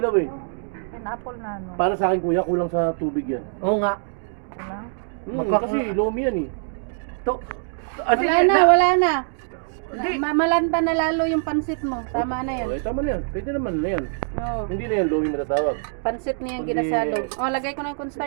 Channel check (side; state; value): left; silent; digital silence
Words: eh. Pineapple na ano. Para sa akin kuya, kulang sa tubig yan. Oo nga. Wala. Kasi lomi yan eh. To. Wala na. Malanta na lalo yung pansit mo. Tama na yan. Okay, tama na yan. Pwede naman na yan. Oo. Hindi na yan lomi matatawag. Pansit niya yung Hindi. ginasalo. Oh, lagay ko na yung